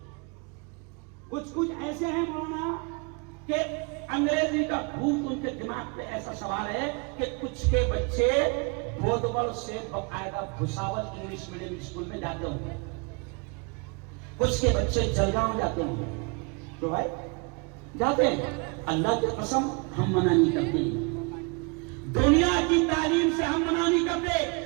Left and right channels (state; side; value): quieter; left; 32.2 dB